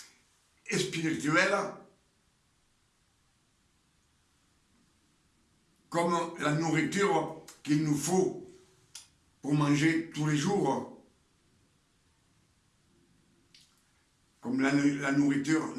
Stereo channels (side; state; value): both; identical; correlation 1.00